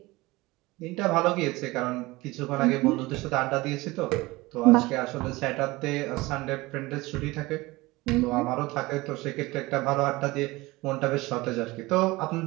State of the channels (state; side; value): quieter; left; 21.2 dB